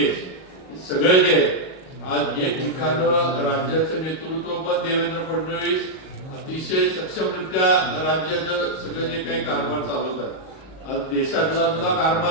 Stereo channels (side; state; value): right; late; 38 ms